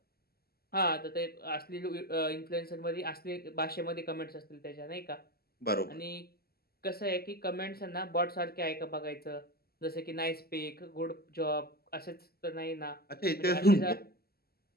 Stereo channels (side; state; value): right; late; 0.45 ms